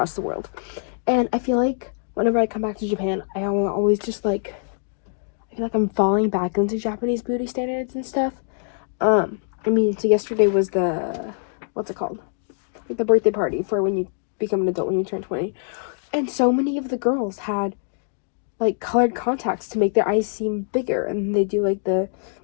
the world. And I feel like whenever I come back to Japan, I always just, like, I feel like I'm falling back into Japanese beauty standards and stuff. I mean, so yesterday was the, what's it called? Like, the birthday party for when you become an adult, when you turn 20. And so many of the girls had, like, colored contacts to make their eyes seem bigger. And they do, like, I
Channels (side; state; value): right; silent; digital silence